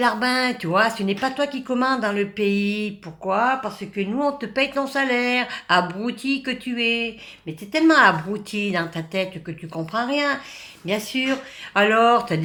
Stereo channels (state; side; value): identical; both; correlation 1.00